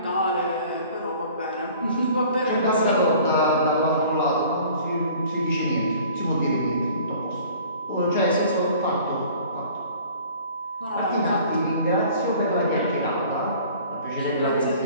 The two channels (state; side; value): inverted; both; correlation -0.49